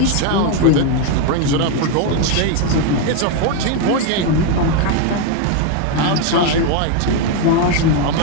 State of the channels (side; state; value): both; different; correlation 0.01